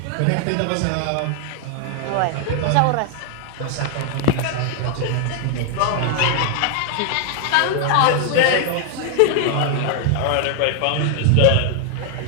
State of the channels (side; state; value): both; different; correlation 0.00